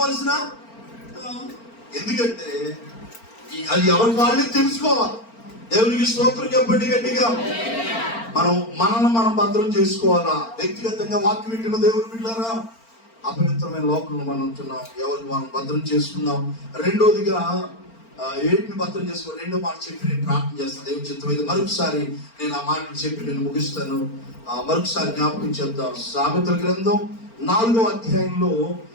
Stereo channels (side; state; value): right; late; 4.4 ms